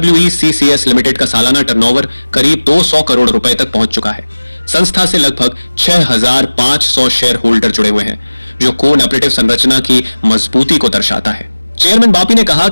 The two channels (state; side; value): inverted; both; correlation -1.00